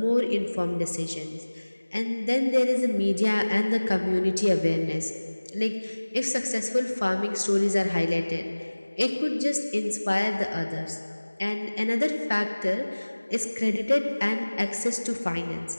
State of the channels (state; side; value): inverted; both; correlation -1.00